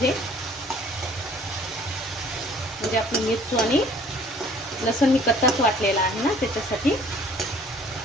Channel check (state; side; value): normal; both; correlation 0.54